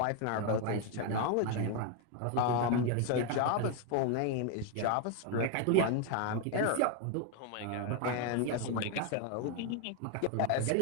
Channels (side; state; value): both; different; correlation 0.01